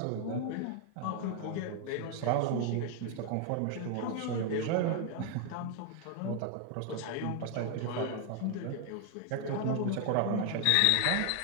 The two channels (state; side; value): different; both; correlation 0.00